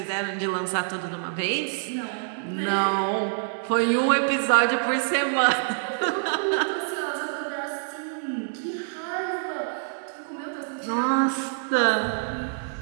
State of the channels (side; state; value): left; silent; 61 dB below the other